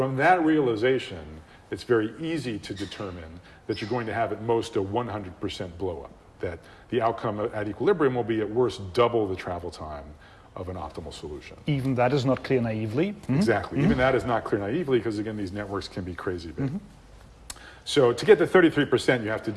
that realization, it's very easy to determine that you're going to have at most a 100% blow up, that the outcome at equilibrium will be at worst double the travel time of an optimal solution. Even that is not clear naively. Exactly, even that is not clear naively, because again, these networks can be crazy big. So to get to 33%, you have to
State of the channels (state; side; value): identical; both; correlation 1.00